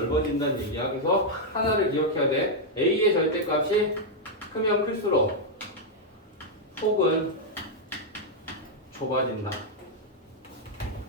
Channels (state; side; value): normal; both; correlation -0.02